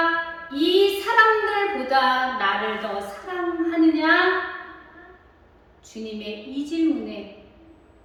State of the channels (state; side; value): identical; both; correlation 1.00